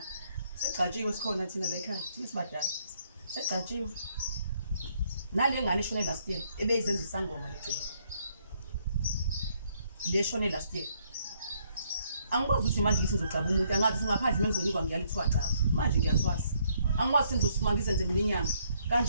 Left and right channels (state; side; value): inverted; both; correlation -0.70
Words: segcatshiwe sikhona thina la ekhaya thina sibadala segcatshiwe nale ngane shone last year ebeyizenza isangoma legcina le shone last year angikwazi ukuthi manje ngithi ngizocaba umuntu angazi ngaphandle mengizonikwa ngiyalithiwa caba manje ngiyathwasa angikwazi sengizosuma ngizenze iminyanga